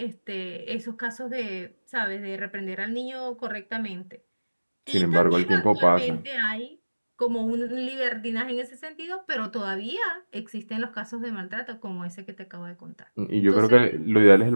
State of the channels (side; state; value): both; inverted; correlation -1.00